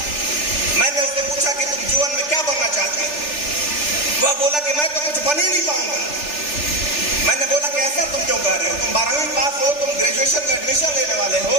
मैंने उससे पूछा कि तुम जीवन में क्या बनना चाहते हो? वह बोला कि मैं तो कुछ बन ही नहीं पाऊंगा। मैंने बोला कि ऐसा तुम क्यों कह रहे हो? तुम 12वीं पास हो, तुम ग्रेजुएशन में एडमिशन लेने वाले हो।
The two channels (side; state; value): right; late; 3.4 ms